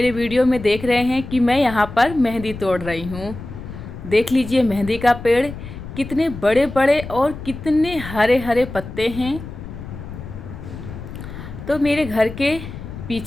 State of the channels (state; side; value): noise; left; rumble, 11 dB below the sound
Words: वीडियो में देख रहे हैं कि मैं यहाँ पर मेहंदी तोड़ रही हूँ। देख लीजिए मेहंदी का पेड़ कितने बड़े बड़े और कितने हरे हरे पत्ते हैं। तो मेरे घर के